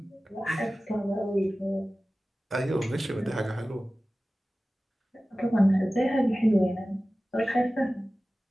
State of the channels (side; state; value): both; normal; correlation 0.96